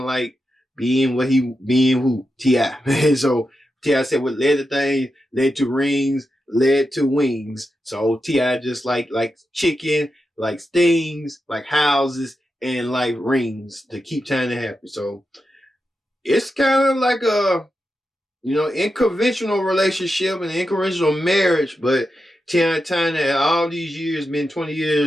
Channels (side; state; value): both; normal; correlation 0.89